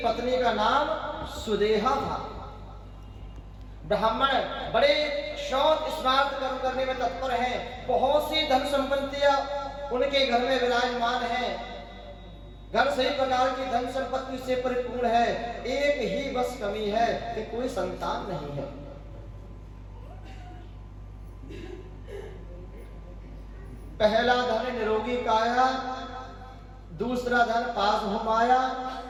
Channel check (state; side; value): identical; both; correlation 1.00